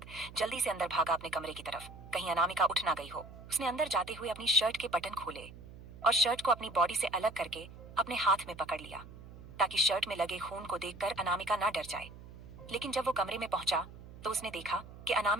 जल्दी से अंदर भागा अपने कमरे की तरफ, कहीं अनामिका उठ ना गई हो। उसने अंदर जाते हुए अपनी शर्ट के बटन खोले और शर्ट को अपनी बॉडी से अलग करके अपने हाथ में पकड़ लिया, ताकि शर्ट में लगे खून को देखकर अनामिका ना डर जाए। लेकिन जब वो कमरे में पहुंचा तो उसने देखा कि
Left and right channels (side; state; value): right; noise; hum, 16 dB below the sound